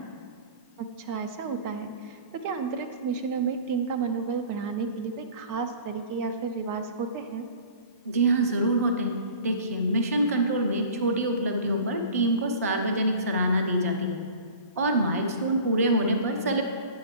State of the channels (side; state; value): both; inverted; correlation -0.42